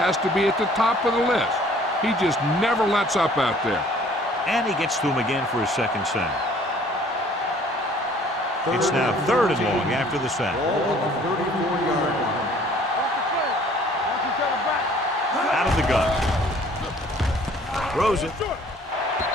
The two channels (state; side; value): normal; both; correlation 0.55